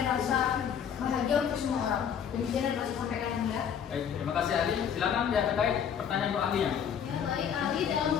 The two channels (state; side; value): quieter; right; 8.1 dB